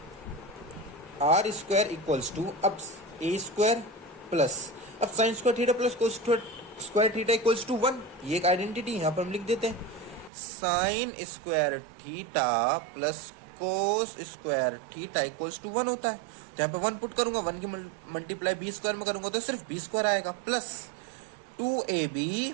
आर स्क्वायर इक्वल्स टू, अब ए स्क्वायर प्लस, अब sine square theta plus cos square theta equals to 1। ये एक आइडेंटिटी यहाँ पर हम लिख देते हैं, sine square theta plus cos square theta equals to 1 होता है। तो यहाँ पे 1 पुट करूंगा, 1 की मल्टीप्लाई बी स्क्वायर में करूंगा तो सिर्फ बी स्क्वायर आएगा plus 2ab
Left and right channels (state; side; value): drops out; left; at 10.3 s